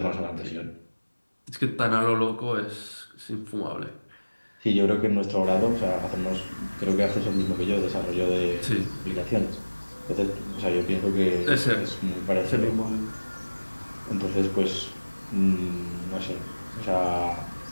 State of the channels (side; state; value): both; inverted; correlation -1.00